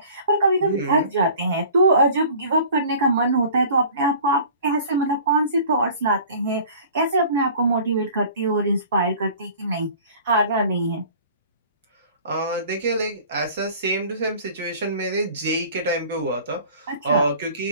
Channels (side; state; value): both; inverted; correlation -0.46